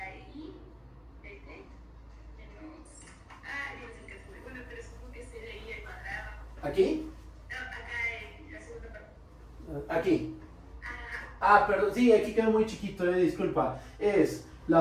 i de t menos Dios mío, bueno, pero supongo que sería i al cuadrado. ¿Aquí? No, acá en la segunda parte. Aquí. Ah, perdón, sí, aquí quedó muy chiquito, disculpa. Es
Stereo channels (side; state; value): both; identical; correlation 1.00